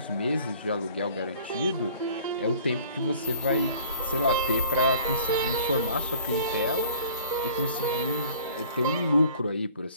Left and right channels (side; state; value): both; inverted; correlation -0.50